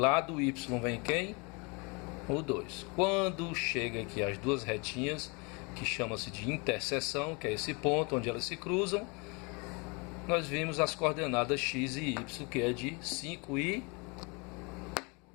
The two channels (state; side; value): quieter; right; 30.6 dB